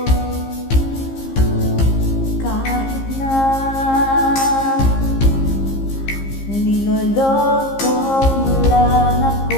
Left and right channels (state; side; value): late; right; 15 ms